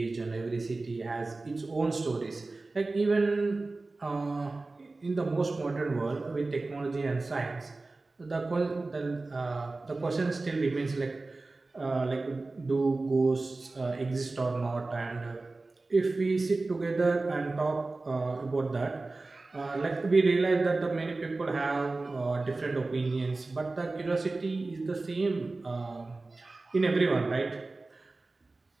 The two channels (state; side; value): quieter; left; 3.4 dB